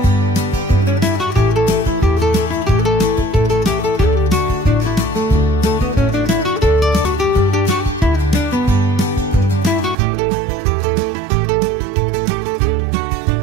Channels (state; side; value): drops out; left; at 10.0 s